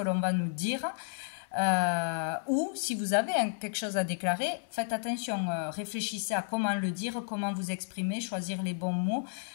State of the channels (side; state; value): right; silent; 56 dB below the other